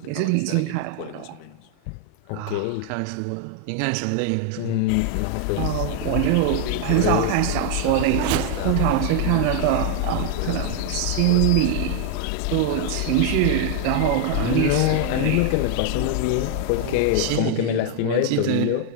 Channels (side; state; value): both; different; correlation 0.00